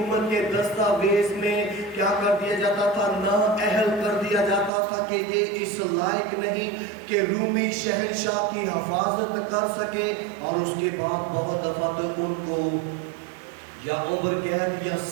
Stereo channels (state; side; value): drops out; left; at 4.7 s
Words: کے دستاویز میں کیا کر دیا جاتا تھا؟ نااہل کر دیا جاتا تھا کہ یہ اس لائق نہیں کہ رومی شہنشاہ کی حفاظت کر سکے، اور اس کے بعد بہت دفعہ تو ان کو یا عمر قید یا